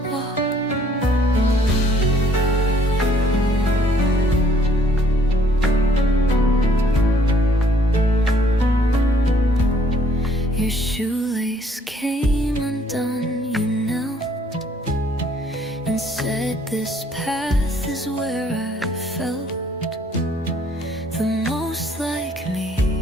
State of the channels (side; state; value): both; normal; correlation 0.62